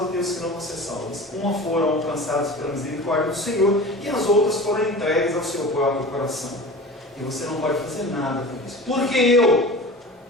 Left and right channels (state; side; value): normal; both; correlation 0.36